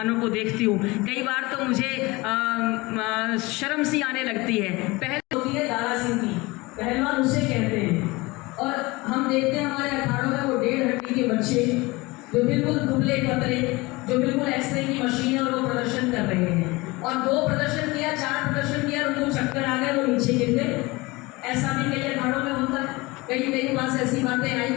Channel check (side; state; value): right; quieter; 22.9 dB